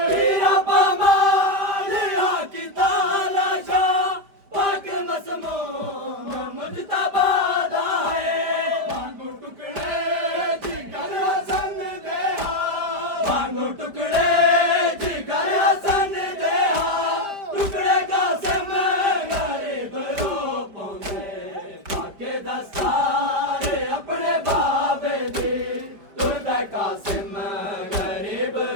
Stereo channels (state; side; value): late; left; 5.0 ms